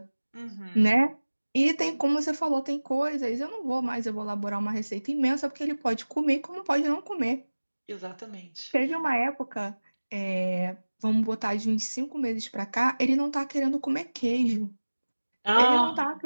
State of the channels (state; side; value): inverted; both; correlation -1.00